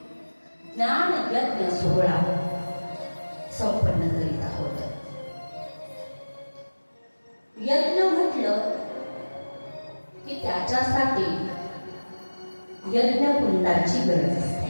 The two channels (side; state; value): both; inverted; correlation -1.00